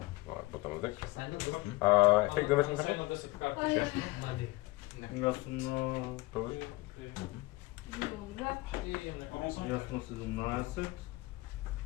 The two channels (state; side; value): quieter; right; 21.8 dB